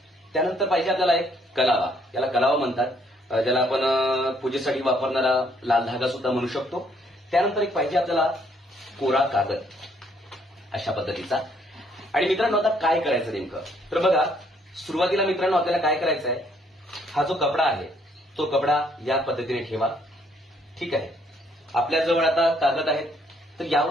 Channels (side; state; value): both; normal; correlation 0.67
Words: त्यानंतर पाहिजे आपल्याला एक कलावा, याला कलावा म्हणतात, ज्याला आपण पूजेसाठी वापरणारा लाल धागा सुद्धा म्हणू शकतो. त्यानंतर एक पाहिजे आपल्याला कोरा कागद अशा पद्धतीचा. आणि मित्रांनो आता काय करायचं नेमकं तर बघा, सुरुवातीला मित्रांनो आपल्याला काय करायचं आहे, हा जो कपडा आहे तो कपडा या पद्धतीने ठेवा. ठीक आहे. आपल्याजवळ आता कागद आहेत तर